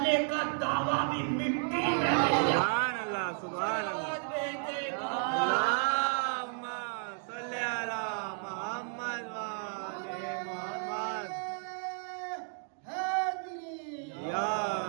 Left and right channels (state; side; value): silent; left; 56 dB below the other